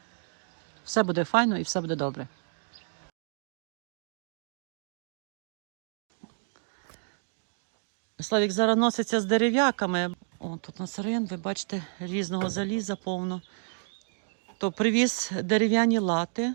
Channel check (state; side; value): silent; left; 58 dB below the other